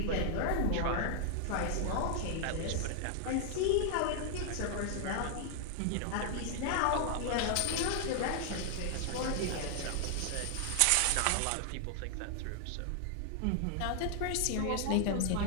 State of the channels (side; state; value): both; different; correlation 0.00